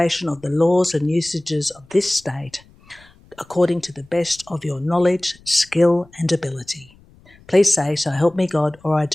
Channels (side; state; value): left; noise; rumble, 28 dB below the sound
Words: of the laws and usages of this state according to the best of your knowledge, skill and ability? Please say, "So help me God," or "I